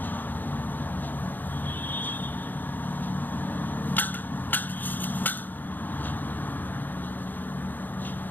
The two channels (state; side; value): late; right; 0.087 ms